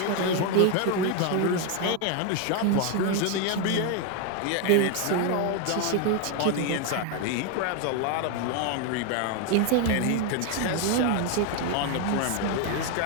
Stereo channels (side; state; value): both; different; correlation 0.01